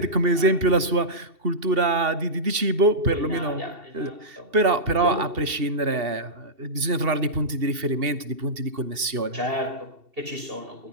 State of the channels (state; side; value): late; left; 2.7 ms